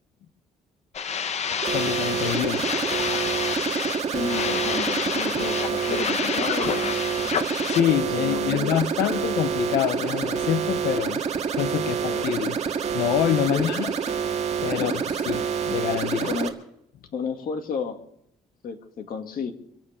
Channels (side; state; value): both; normal; correlation 0.34